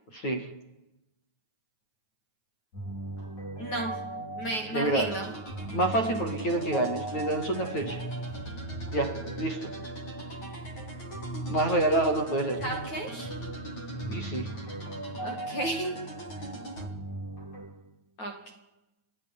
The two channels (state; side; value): late; right; 9.3 ms